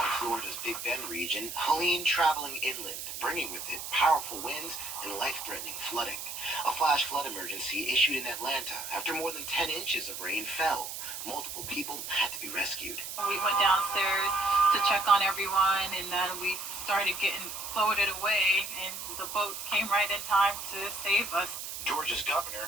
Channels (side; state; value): right; noise; hiss, 7 dB below the sound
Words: Florida's Big Bend region, Helene traveling inland, bringing with it powerful winds and life-threatening flooding. A flash flood emergency issued in Atlanta after more than 10 inches of rain fell. Multiple people had to be rescued. We went downstairs to check on everyone, and then we started getting floated away, and the boats came right in time to save us. Georgia's governor